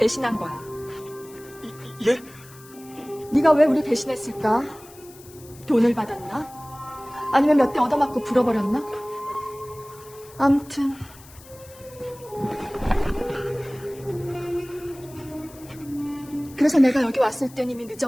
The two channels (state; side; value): noise; left; hiss, 22 dB below the sound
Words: 거야. 예? 네가 왜 우리 배신했을까? 돈을 받았나? 아니면 몇 대 얻어맞고 불어버렸나? 암튼 그래서 내가 여기 왔을 땐 이미